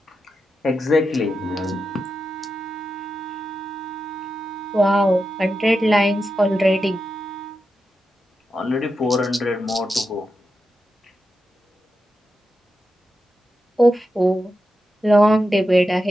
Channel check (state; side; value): normal; both; correlation 0.88